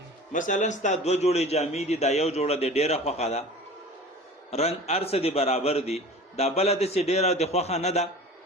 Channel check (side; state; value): both; normal; correlation 0.40